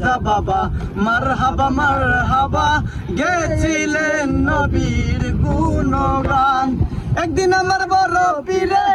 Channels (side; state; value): both; identical; correlation 1.00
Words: বাবা মারহাবা গেছিলেন নবীর গুণগান। একদিন আমার বড় পীরে